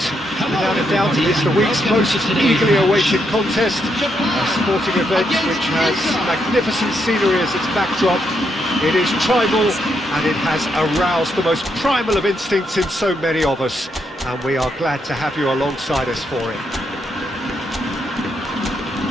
Without a doubt, it is the week's most eagerly awaited contest, a sporting event which has magnificent scenery as its backdrop. It is tribal, and it has aroused the most primal of instincts in so many of us, and we are glad to have you alongside us for it.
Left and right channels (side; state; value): both; normal; correlation 0.79